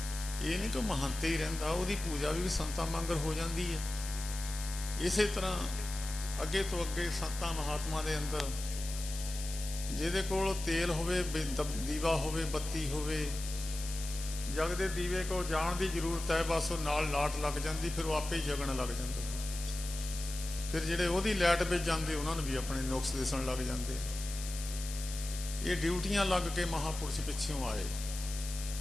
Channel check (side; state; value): left; noise; hiss, 9 dB below the sound